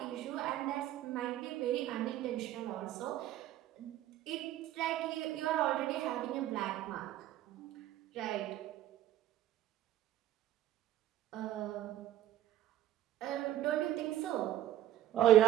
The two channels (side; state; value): left; quieter; 13.0 dB